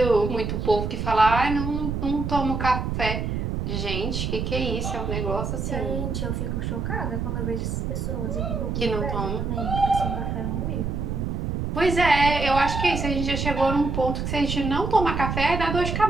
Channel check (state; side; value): noise; right; rumble, 2 dB below the sound